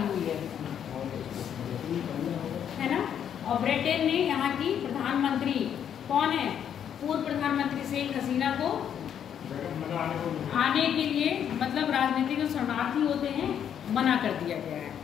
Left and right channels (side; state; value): right; quieter; 8.9 dB